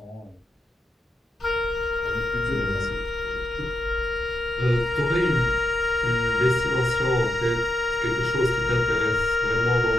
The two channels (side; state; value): both; normal; correlation 0.85